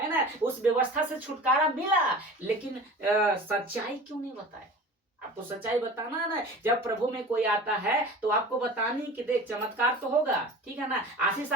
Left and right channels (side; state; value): both; normal; correlation 0.38